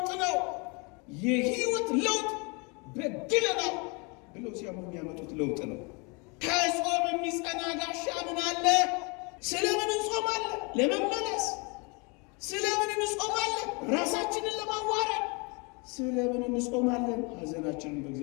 ነው። የህይወት ለውጥ በድለናል ብለው ሲያምኑ የሚያመጡት ለውጥ ነው። ከጾም የሚጸና ጋሻ ምን አለ? ስለምን እንጾማለን? ለመመለስ። ስለምን እንጾማለን? ራሳችንን ለማዋረድ። ስለምን እንጾማለን? ሐዘናችንን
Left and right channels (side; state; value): right; quieter; 31.3 dB